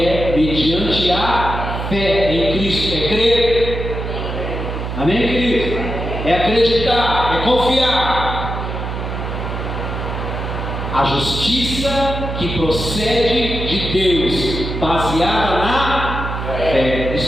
mediante a fé em Cristo. É crer. Amém, querido? É acreditar, é confiar. A justiça que procede de Deus, baseada na fé.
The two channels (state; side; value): noise; right; hum, 5 dB below the sound